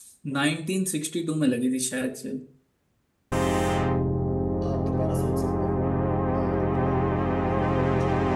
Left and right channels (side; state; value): both; identical; correlation 1.00